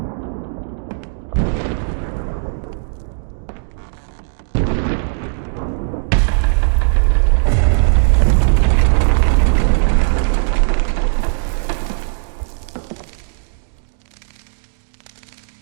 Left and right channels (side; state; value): left; silent; digital silence